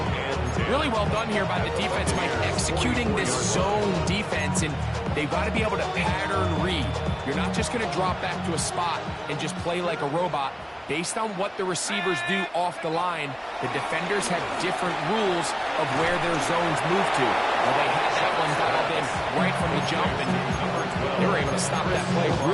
and 10. Really well done here by the defense, Mike, executing this zone defense, and they've got to be able to pattern read. You're not just going to drop back to a spot and just play like a robot. Based on what the receivers do off the line, the defenders have different rules of where their zones move to. Well, they had that one dialed in right from the jump, and they were able to stop that play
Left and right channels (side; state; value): both; identical; correlation 1.00